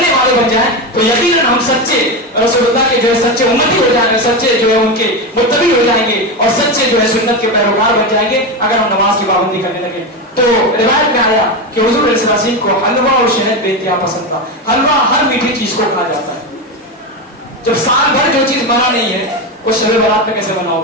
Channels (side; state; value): both; normal; correlation 0.16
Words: والے بن جائیں تو یقیناً ہم سچے رسول اللہ کے جو ہے سچے امتی ہو جائیں گے, سچے جو ہے ان کے متبع ہو جائیں گے, اور سچے جو ہے سنت کے پیروکار بن جائیں گے اگر ہم نماز کی پابندی کرنے لگے. تو روایت میں آیا کہ حضور علیہ السلام کو حلوہ اور شہد بے انتہا پسند تھا. حلوہ ہر میٹھی چیز کو کھایا جاتا ہے. جب سال بھر جو چیز بنا نہیں ہے وہ شب برات میں کیسے بنا